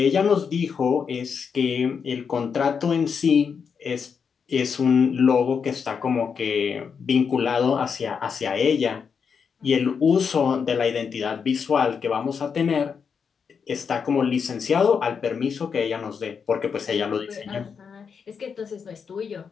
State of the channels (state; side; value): quieter; right; 6.3 dB